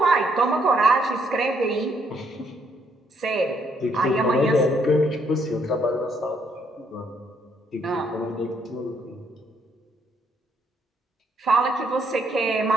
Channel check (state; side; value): normal; both; correlation 0.71